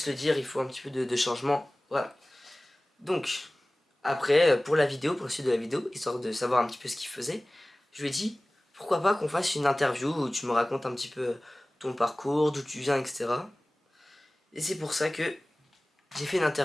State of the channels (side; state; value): both; normal; correlation 0.98